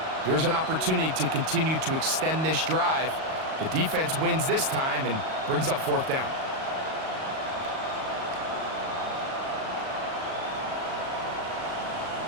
Here's an opportunity to continue to extend this drive. The defense wins this time and brings up fourth down.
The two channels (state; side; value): late; left; 38 ms